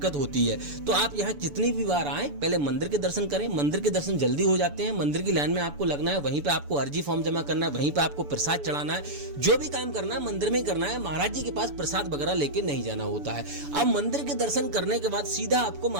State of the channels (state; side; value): late; left; 6.9 ms